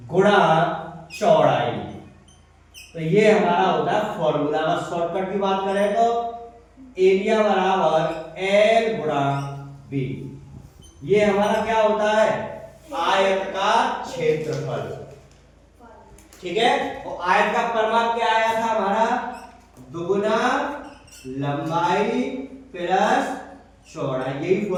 चौड़ाई। तो ये हमारा होता है फॉर्मूला। अगर शॉर्टकट की बात करें तो एरिया बराबर एल गुणा बी। ये हमारा क्या होता है, आयत का क्षेत्रफल। ठीक है। और आयत का परिमाप क्या आया था हमारा, दुगुना लंबाई प्लस चौड़ाई। यही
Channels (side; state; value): both; identical; correlation 1.00